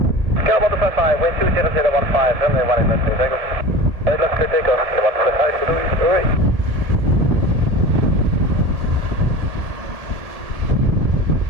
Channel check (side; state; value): left; late; 1.7 ms